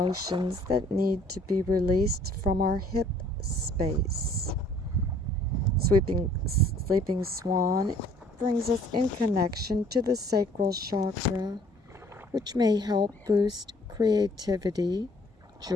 that need to be released from our hip space. Sleeping swan brings us in connection to the sacral chakra, which may help boost creativity,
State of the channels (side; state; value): both; normal; correlation 0.57